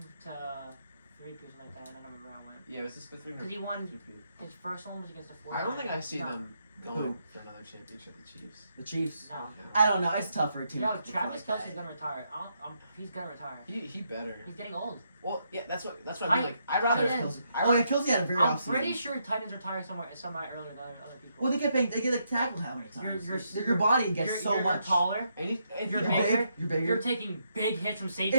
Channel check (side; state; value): both; inverted; correlation -0.78